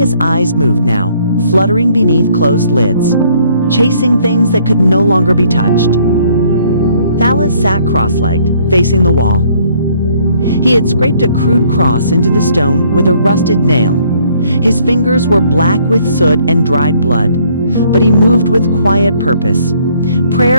eyes moved now, fluttering beneath closed lids, chasing things that could no longer be touched. Thalas sat cross-legged, facing the wall. He had scraped a crude cross into the stone with a rusted nail. His fingers were black with soot and dried blood, but he moved with quiet purpose.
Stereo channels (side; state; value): both; inverted; correlation -0.63